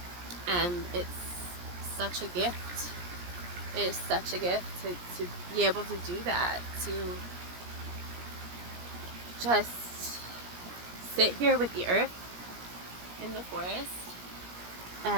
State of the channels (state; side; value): late; left; 17 ms